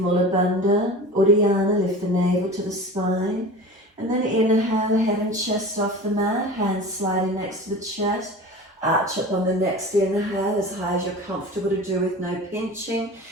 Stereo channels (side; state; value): both; normal; correlation 0.35